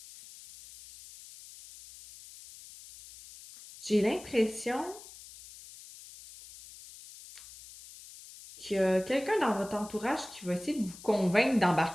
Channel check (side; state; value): left; noise; hiss, 18 dB below the sound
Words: J'ai l'impression qu'il y a quelqu'un dans votre entourage qui va essayer de vous convaincre